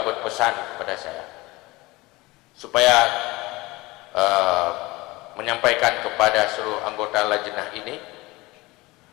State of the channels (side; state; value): right; quieter; 21.6 dB